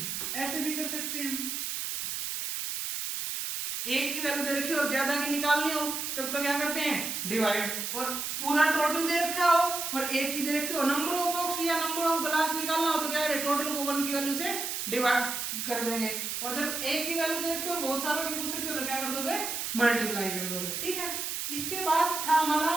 ऐसे भी कर सकते हैं। एक की वैल्यू दे रखी हो और ज्यादा की निकालनी हो तब तो क्या करते हैं डिवाइड, और पूरा टोटल दे रखा हो और एक की दे रखी हो, नंबर ऑफ बॉक्स या नंबर ऑफ ग्लास निकालना हो तो क्या करें टोटल को 1 की वैल्यू से डिवाइड कर देंगे। और जब एक की वैल्यू दे रखी हो बहुत सारों की पूछ रखी हो तो क्या कर दोगे मल्टीप्लाई कर दोगे। ठीक है, इसके बाद था हमारा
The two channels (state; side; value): noise; right; hiss, 3 dB below the sound